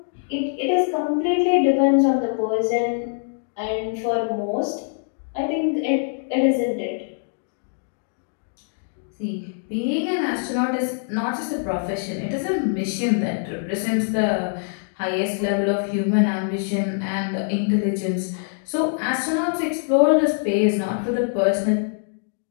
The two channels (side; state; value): right; silent; digital silence